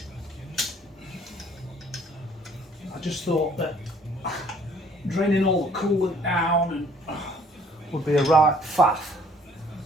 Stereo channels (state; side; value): normal; both; correlation 0.59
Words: I just thought that draining all the coolant down would be a right faff.